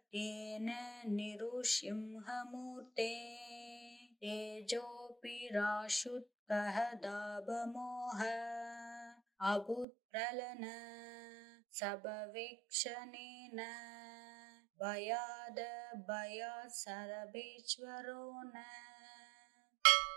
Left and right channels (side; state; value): left; drops out; at 9.9 s